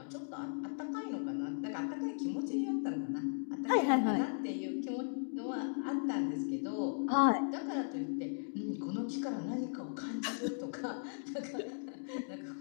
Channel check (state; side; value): silent; right; digital silence